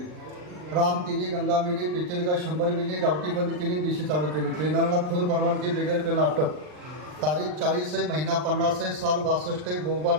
राम तिरी, गंगा मिली, पिचलगा 100 मिली, गावठी बंद केली, दिशी चालू केली. ट्रेनरला फुल परवानगी, बेगर पेन अटक. तारीख 40 आहे, महिना 50 आहे, साल 62 आहे,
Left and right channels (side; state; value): left; late; 39 ms